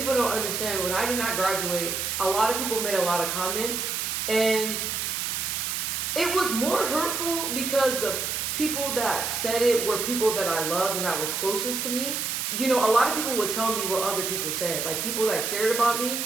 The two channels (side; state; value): right; noise; hiss, 1 dB below the sound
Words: don't understand. When I did not graduate, a lot of people made a lot of comments, and it was more hurtful because the people that said it were people that I loved and that were closest to me. You know, a lot of people would tell me what other people said, like people that cared about me,